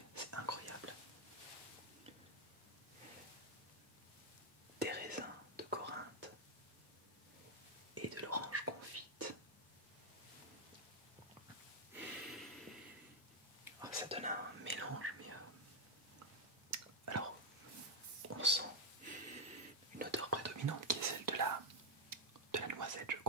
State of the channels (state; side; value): normal; both; correlation 0.01